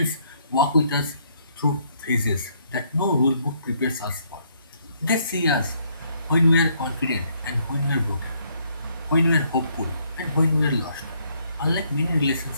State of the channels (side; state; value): both; inverted; correlation -0.69